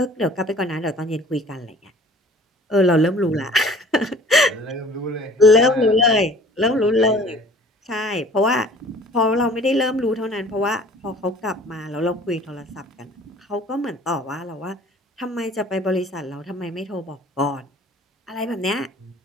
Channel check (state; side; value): normal; both; correlation 0.49